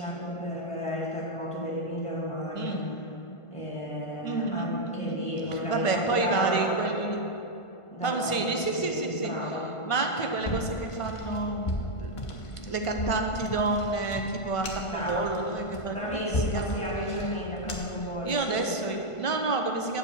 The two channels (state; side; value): late; right; 1.5 ms